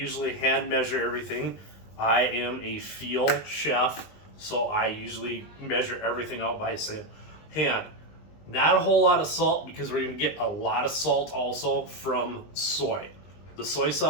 hand measure everything. I am a field chef, so I usually measure everything out by hand. Not a whole lot of salt because we're going to get a lot of salt also from soy. The soy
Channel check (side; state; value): right; late; 20 ms